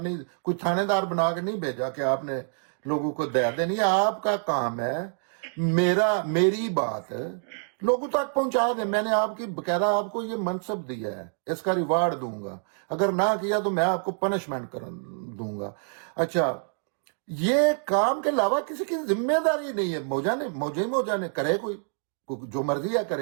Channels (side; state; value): left; silent; digital silence